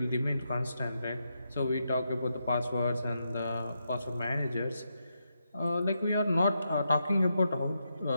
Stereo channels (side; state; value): both; inverted; correlation -0.83